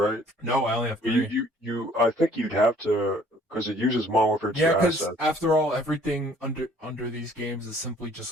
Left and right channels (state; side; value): normal; both; correlation 0.58